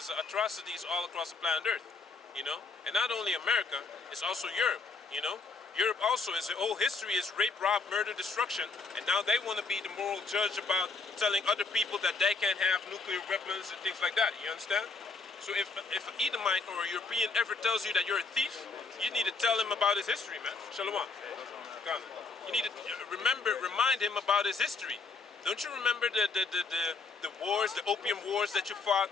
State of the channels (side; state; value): right; quieter; 4.2 dB